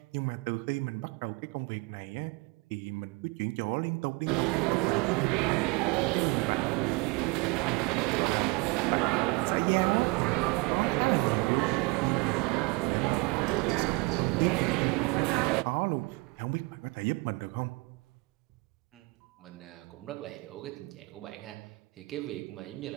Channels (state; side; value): quieter; left; 26.9 dB